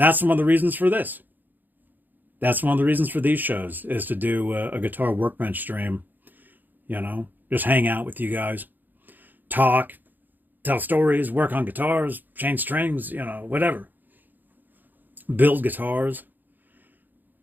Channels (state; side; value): late; left; 0.087 ms